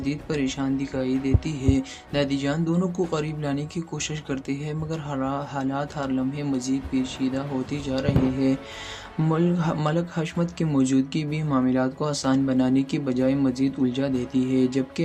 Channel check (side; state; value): both; identical; correlation 1.00